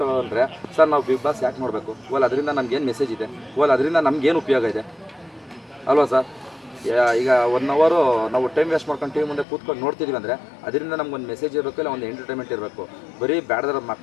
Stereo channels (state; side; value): drops out; right; at 9.5 s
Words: ತಗೊಂಡ್ರೆ ಸರ್, ನಾವು ಬಿಗ್ ಬಾಸ್ ಯಾಕೆ ನೋಡಬೇಕು? ಓಲ್ ಅದರಿಂದ ನಮಗೇನು ಮೆಸೇಜ್ ಇದೆ, ಓಲ್ ಅದರಿಂದ ನಮಗೇನು ಉಪಯೋಗ ಇದೆ ಅಲ್ವಾ ಸರ್? ಈಗ 1 ಅವರ್ ನಾವು ಟೈಮ್ ವೇಸ್ಟ್ ಮಾಡ್ಕೊಂಡು ಟಿವಿ ಮುಂದೆ ಕೂತ್ಕೊಂಡು ನೋಡ್ತಿದ್ದೀವಿ ಅಂದರೆ ಅದರಿಂದ ನಮ್ಗೊಂದು ಮೆಸೇಜ್ ಇರಬೇಕು, ಇಲ್ಲ ಒಂದು ಎಂಟರ್ಟೈನ್ಮೆಂಟ್ ಇರಬೇಕು. ಬರೀ ಬ್ಯಾಡ್ದಾರ